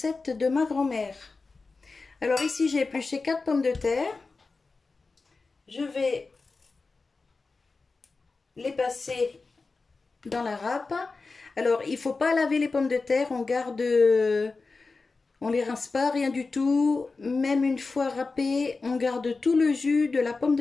de ma grand-mère. Alors ici, j'ai épluché 4 pommes de terre. Je vais les passer dans la râpe. Alors, il ne faut pas laver les pommes de terre. On garde... On les rince pas, rien du tout. Même une fois râpées, on garde tout le jus de la pomme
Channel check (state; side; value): quieter; right; 4.0 dB